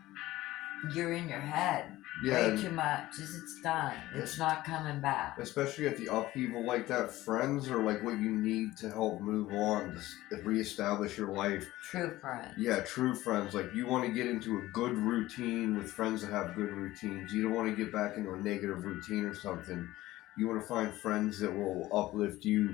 you're in your head Yeah, way and too much. It's done. It's not coming back. especially at the upheaval like that, friends are like what you need to help move on, to reestablish your life. True friends. Yeah, true friends. Like you want to get into a good routine with friends that have good routines. You don't want to get back into a negative routine or something. You want to find friends that will uplift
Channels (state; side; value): quieter; right; 16.7 dB